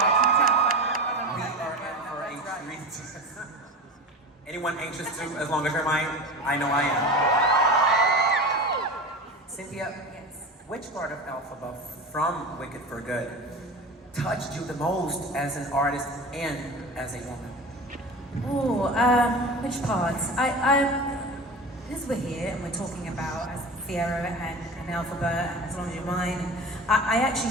in for a treat. Anyone anxious to, as long as you're mine? I know I am. Cynthia, which part of Elphaba from Wicked for Good touched you the most as an artist and as a woman? Which parts? As we're here and we're talking about as Fiyero and Elphaba and As Long As You're Mine, I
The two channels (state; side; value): normal; both; correlation 0.31